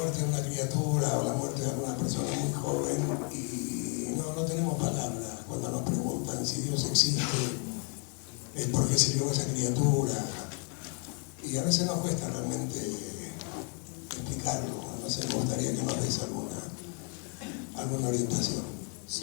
de una criatura o la muerte de una persona muy joven y no tenemos palabras cuando nos preguntan si Dios existe, es porque se dio esa criatura, y a veces nos cuesta realmente explicarlo. No sé, me gustaría que nos des alguna orientación.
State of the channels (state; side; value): quieter; right; 37.5 dB